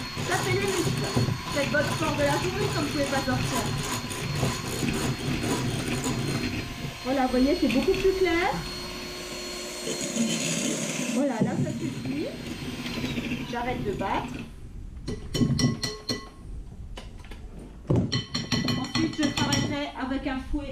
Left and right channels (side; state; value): both; identical; correlation 1.00